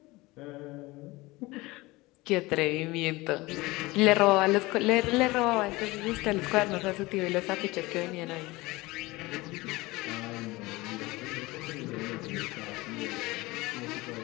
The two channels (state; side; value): quieter; right; 21.5 dB